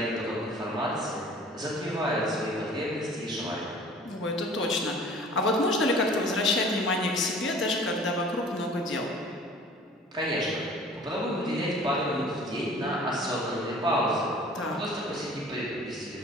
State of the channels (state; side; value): normal; both; correlation 0.48